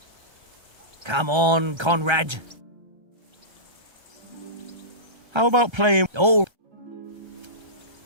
Come on, Conrad. How about playing... Oh.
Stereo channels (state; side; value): late; left; 1.3 ms